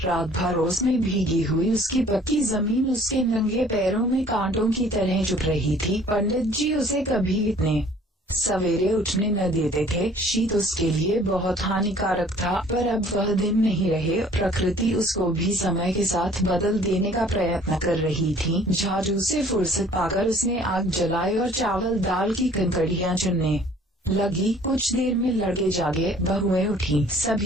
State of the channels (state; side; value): normal; both; correlation 0.54